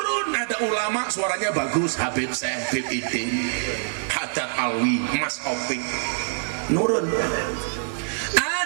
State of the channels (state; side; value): silent; left; digital silence